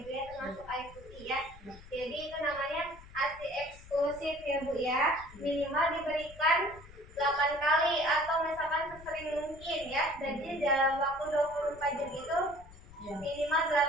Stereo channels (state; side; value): noise; left; rumble, 19 dB below the sound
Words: Bu ya, termasuk air putih ya. Jadi itu namanya ASI eksklusif ya Bu ya. Minimal diberikan 8 kali atau misalkan sesering mungkin ya. Jadi dalam waktu 24 jam itu minimal